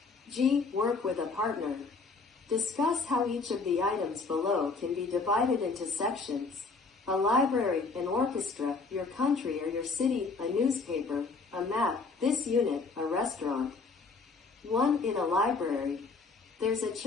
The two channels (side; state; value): right; quieter; 4.2 dB